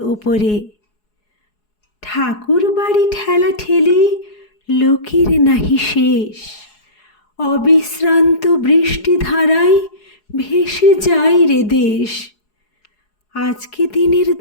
ওপরে। ঠাকুর বাড়ি ঠেলা ঠেলি লোকের নাহি শেষ। অবিশ্রান্ত বৃষ্টিধারায় ভেসে যায় রে দেশ। আজকে দিনের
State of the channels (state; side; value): late; right; 4.8 ms